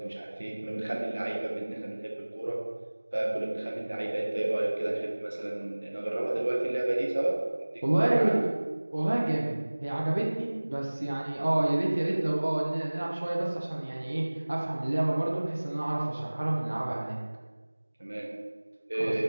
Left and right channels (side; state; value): both; inverted; correlation -1.00